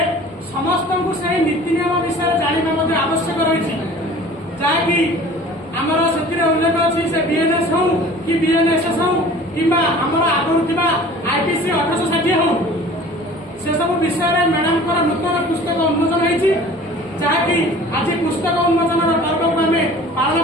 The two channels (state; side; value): normal; both; correlation 0.45